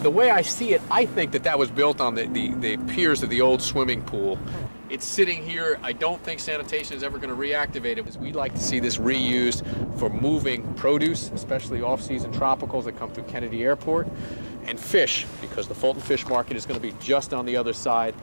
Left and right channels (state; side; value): inverted; both; correlation -1.00